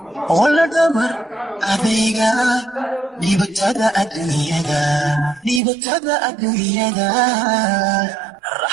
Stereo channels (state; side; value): drops out; left; at 5.6 s